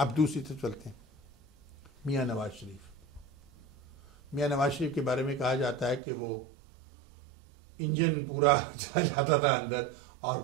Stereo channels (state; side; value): drops out; left; at 6.0 s